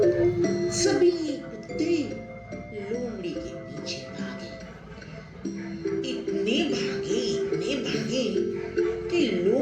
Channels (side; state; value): both; identical; correlation 1.00